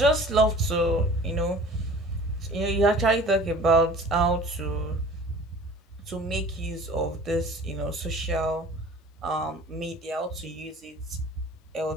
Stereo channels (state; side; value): normal; both; correlation 0.45